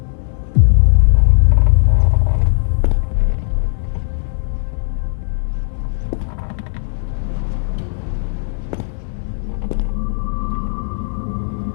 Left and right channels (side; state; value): right; silent; digital silence